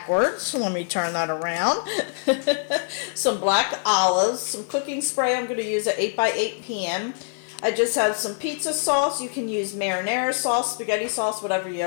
so let me turn that around. Some black olives, some cooking spray. I'm going to use an 8x8 pan. I just have some pizza sauce. You can use marinara sauce, spaghetti sauce, whatever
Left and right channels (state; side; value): silent; right; digital silence